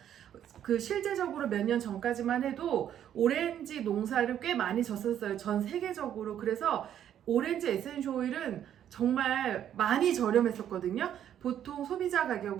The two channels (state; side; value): quieter; left; 10.2 dB